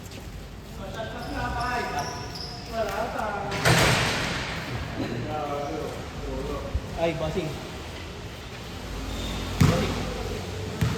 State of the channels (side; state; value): both; identical; correlation 1.00